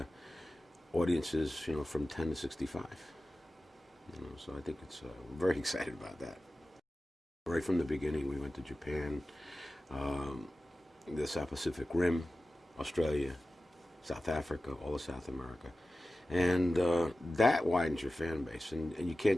audiences, you know, from 10 to 65. You know, so I think it's we're very excited about that. Right from the beginning, we went to Japan, um, the South Pacific Rim, Australia, South Africa, all of South America. And that widens your fan base. And you can't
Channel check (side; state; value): both; normal; correlation 0.95